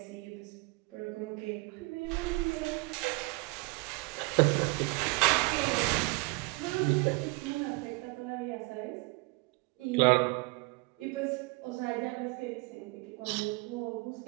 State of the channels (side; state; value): left; quieter; 28.1 dB